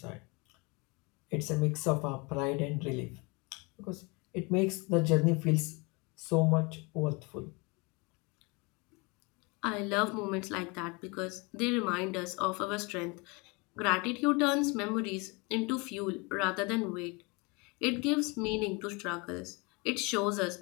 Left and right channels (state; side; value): quieter; right; 28.5 dB